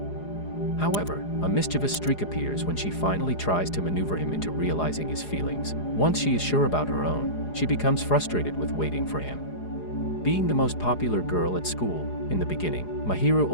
However, a mischievous streak appears when she finally tries to maneuver him into realizing his feelings. Once she is sure about her own, she becomes frustrated with waiting for him. Being the most popular girl at school, in the beginning, Mahiru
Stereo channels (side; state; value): right; late; 4.8 ms